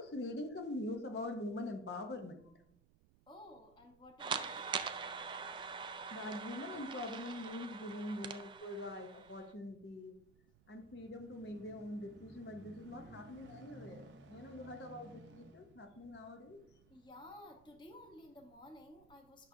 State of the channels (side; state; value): right; noise; rumble, 26 dB below the sound